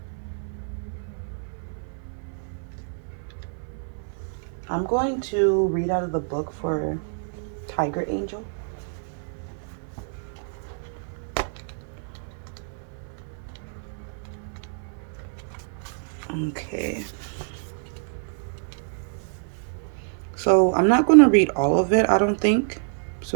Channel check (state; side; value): silent; left; 60 dB below the other